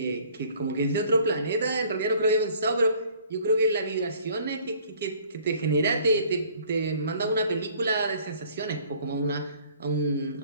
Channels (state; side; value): inverted; both; correlation -0.55